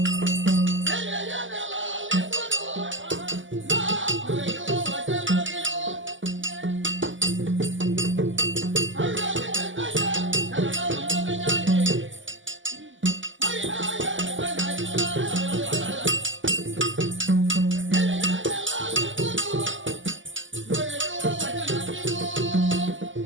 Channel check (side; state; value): left; late; 0.56 ms